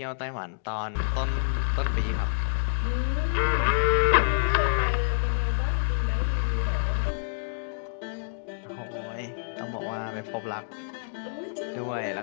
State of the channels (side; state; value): right; silent; digital silence